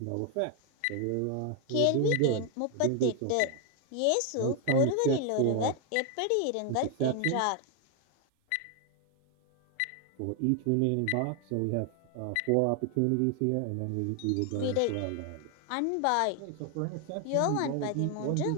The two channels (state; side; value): different; both; correlation 0.00